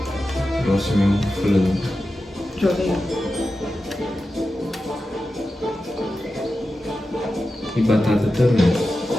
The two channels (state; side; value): normal; both; correlation 0.92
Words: Próximo é um frango. Joga aí. E batata também.